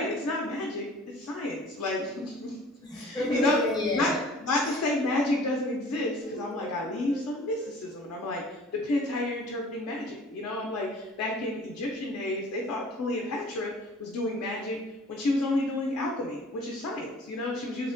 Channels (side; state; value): both; normal; correlation 0.48